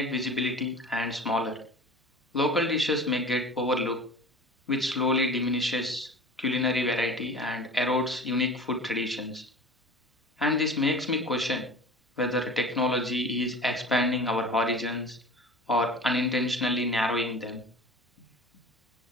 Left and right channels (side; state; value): both; normal; correlation 0.38